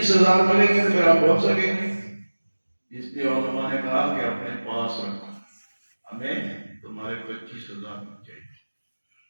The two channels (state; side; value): inverted; both; correlation -1.00